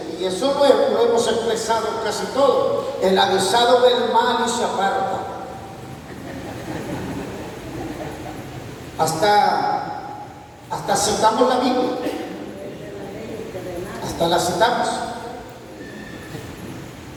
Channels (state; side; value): identical; both; correlation 1.00